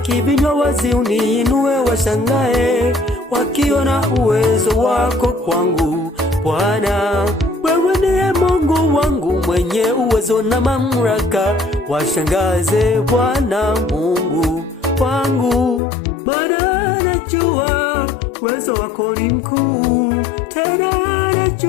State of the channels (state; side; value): drops out; right; at 15.8 s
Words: vinywa wazi, uniinue washangae, wakiona uwezo wako kwangu Bwana. Wewe ndiye Mungu wangu mwenye uwezo na mamlaka, washangaze Bwana Mungu wangu. Maana najua uwezo wako ni mkuu, tena